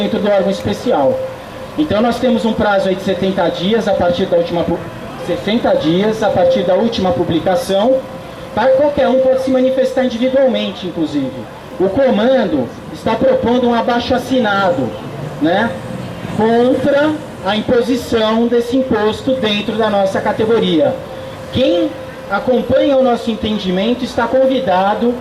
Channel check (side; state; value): both; identical; correlation 1.00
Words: do órgão especial. Então nós temos um prazo aí de 70 dias a partir da última 60 dias a partir da última publicação, para qualquer um pode se manifestar individualmente, inclusive. O comando está propondo um abaixo-assinado, né, contra a imposição desse imposto dentro da nossa categoria. Quem acompanha o nosso entendimento está convidado